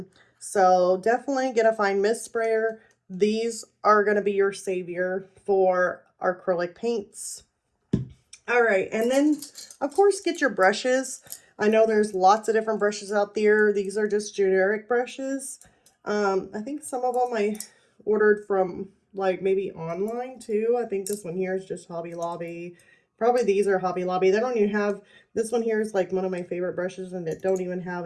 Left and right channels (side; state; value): both; identical; correlation 1.00